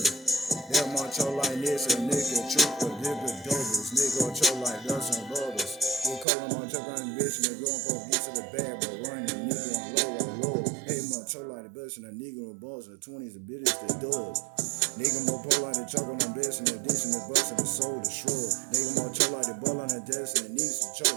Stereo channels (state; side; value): drops out; left; at 6.2 s